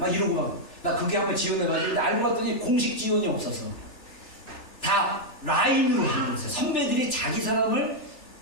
이러고 막 나 그게 한번 지원해가지고 알고 봤더니 공식 지원이 없어서 다 라인으로 하는 거였어요. 선배들이 자기 사람을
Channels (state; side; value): late; right; 3.4 ms